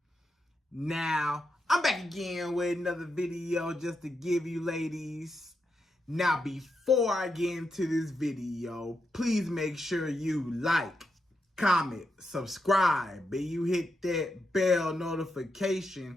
Now, I'm back again with another video just to give you ladies. Now, before I get into this video, please make sure you like, comment, subscribe, and you hit that bell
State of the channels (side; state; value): both; normal; correlation 0.84